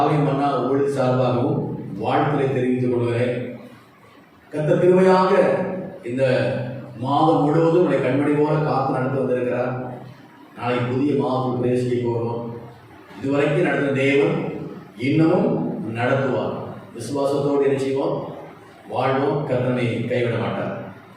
மன்னா ஊழியர் சார்பாகவும் வாழ்த்துக்களை தெரிவித்துக் கொள்கிறேன். கர்த்தர் கிருபையாக இந்த மாதம் முழுவதும் உடைய கண்மணி போல காத்து நடந்து வந்திருக்கிறார். நாளைக்கு புதிய மாதத்துக்கு பிரவேசிக்க போகிறோம். இதுவரைக்கும் நடந்த தேவன் இன்னமும் நடத்துவார். விசுவாசத்தோடு என்ன செய்வோம்? வாழ்வோம். கர்த்தனை கைவிட மாட்டார்.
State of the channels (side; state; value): both; identical; correlation 1.00